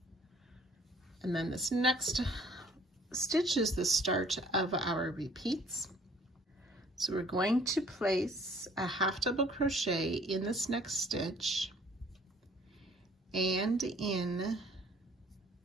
And then this next stitch is the start of our repeats. So we're going to place a half double crochet in this next stitch and in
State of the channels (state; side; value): normal; both; correlation 0.56